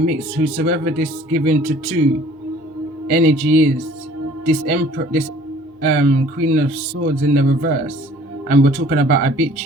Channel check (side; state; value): both; normal; correlation 0.52